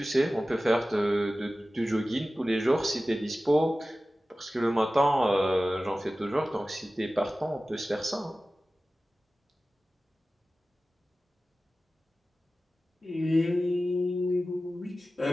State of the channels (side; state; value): both; normal; correlation 0.96